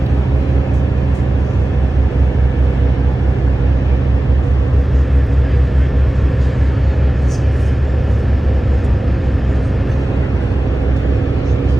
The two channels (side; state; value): both; normal; correlation 0.96